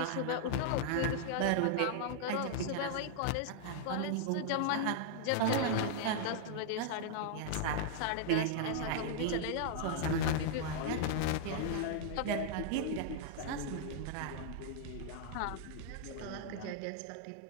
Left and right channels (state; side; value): different; both; correlation -0.01